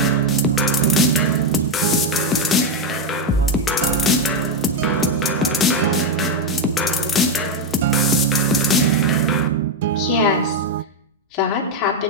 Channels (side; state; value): both; normal; correlation 0.05